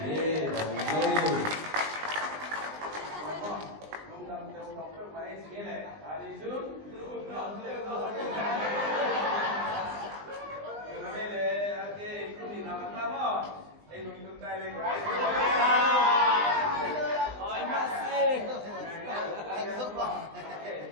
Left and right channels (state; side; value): late; left; 20 ms